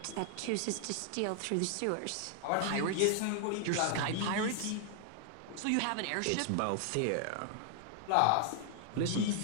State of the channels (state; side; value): different; both; correlation 0.00